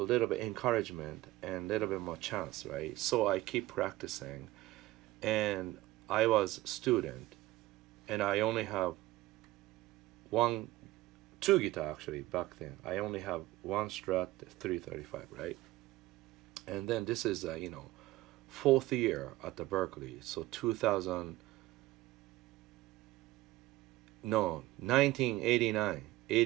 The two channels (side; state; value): left; quieter; 17.6 dB